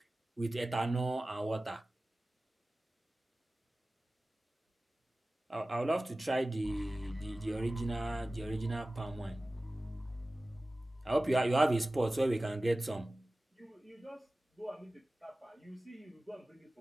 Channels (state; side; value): normal; both; correlation 0.96